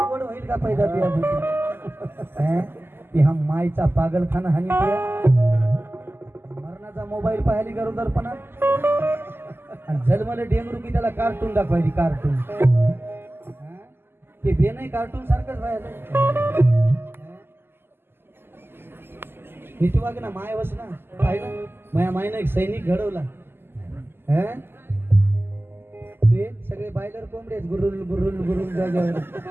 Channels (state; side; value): late; left; 0.11 ms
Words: होईल का पैदा ती हा मायचा पागलखाना हानी मरणाचा मोबाईल पाहिली गरोदरपणा आणि जन्मले डेंगरू की त्याला कार्टून दाखवायची. कार्टून ते बे नाही कार्टून सारखंच व्हायला. नीती वाग ना माय वस ना पाहिलं माया मायनं एक सैनिक घडवला. ते सगळे बायलर कोंबडे गुरुल गुरुल गुरुल जाग्यावर